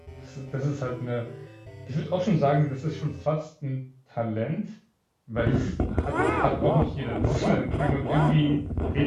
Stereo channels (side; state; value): both; identical; correlation 1.00